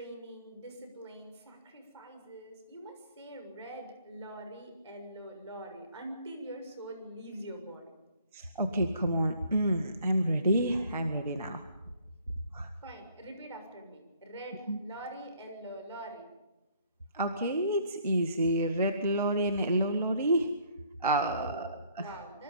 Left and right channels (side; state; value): both; inverted; correlation -0.61